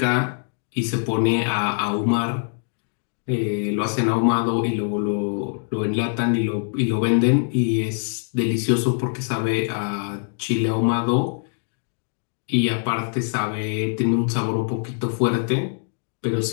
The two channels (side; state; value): right; silent; digital silence